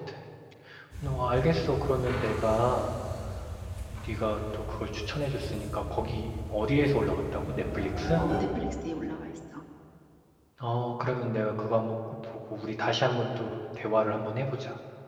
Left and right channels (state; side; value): identical; both; correlation 1.00